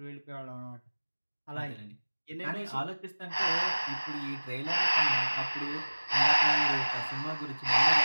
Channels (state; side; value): inverted; both; correlation -1.00